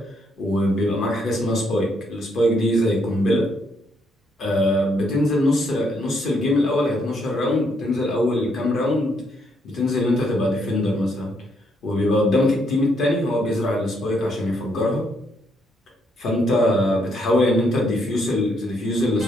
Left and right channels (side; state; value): both; normal; correlation 0.73